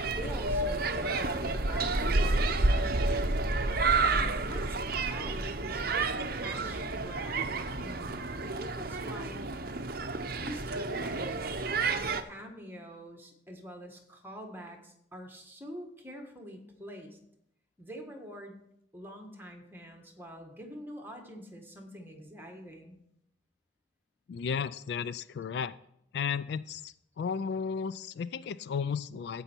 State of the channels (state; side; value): normal; both; correlation 0.36